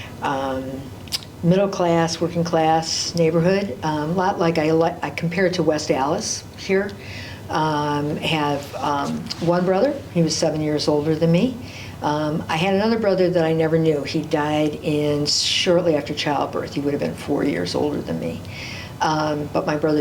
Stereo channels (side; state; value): both; identical; correlation 1.00